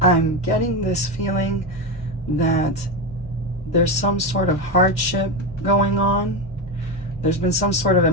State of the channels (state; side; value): normal; both; correlation 0.15